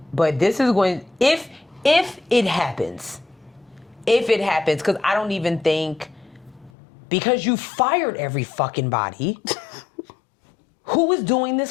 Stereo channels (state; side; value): drops out; right; at 6.7 s